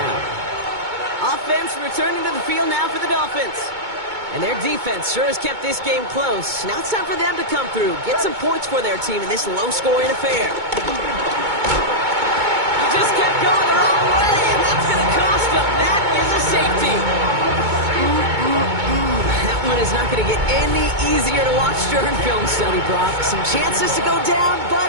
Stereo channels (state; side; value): late; left; 2.2 ms